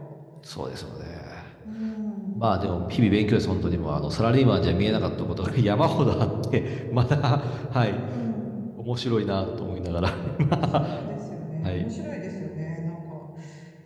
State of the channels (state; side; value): identical; both; correlation 1.00